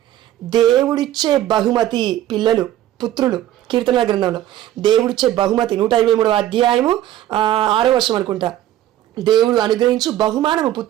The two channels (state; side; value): quieter; left; 13.2 dB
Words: దేవుడిచ్చే బహుమతి పిల్లలు, పుత్రులు. కీర్తనల గ్రంథంలో దేవుడిచ్చే బహుమతి 123వ అధ్యాయము 6వ వర్షం అనుకుంటా, దేవుడు అనుగ్రహించు బహుమానము